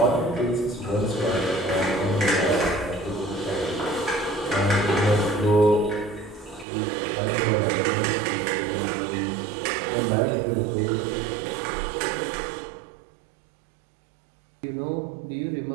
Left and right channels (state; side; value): drops out; left; at 6.7 s